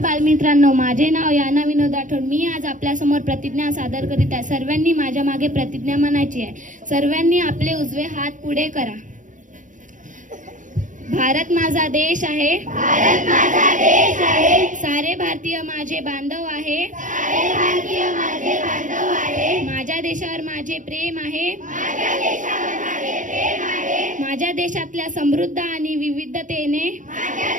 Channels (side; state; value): left; late; 0.37 ms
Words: माझे नाव याना विनोद राठोड. मी आज आपल्या समोर प्रतिज्ञा सादर करीत आहे. सर्वांनी माझ्या मागे प्रतिज्ञा म्हणायची आहे. सर्वांनी आपले उजवे हात पुढे करा. भारत माझा देश आहे. भारत माझा देश आहे. सारे भारतीय माझे बांधव आहे. सारे भारतीय माझे बांधव आहे. माझ्या देशावर माझे प्रेम आहे. माझ्या देशावर माझे प्रेम आहे. माझ्या देशातल्या समृद्ध आणि विविधतेने माझ्या